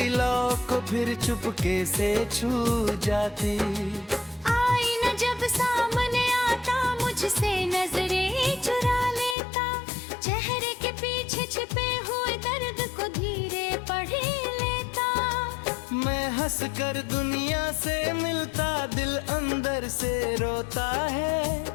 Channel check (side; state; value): right; drops out; at 9.3 s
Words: लौ को फिर चुपके से छू जाती। जब सामने आता मुझसे नजरें चुरा लेता, चेहरे के पीछे छिपे हुए दर्द को धीरे पढ़ लेता। मैं हंस कर दुनिया से मिलता, दिल अंदर से रोता है,